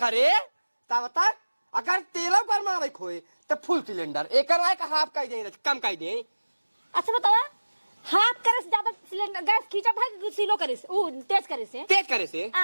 घरे तब तक अगर तेलो कर मारे खोए तो फुल सिलेंडर एक हाफ का दे कम का दे अच्छा बतावा हाथ करे से ज्यादा सिलेंडर गैस खींचा था कि सीलो करे से तेज करे से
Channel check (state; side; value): inverted; both; correlation -1.00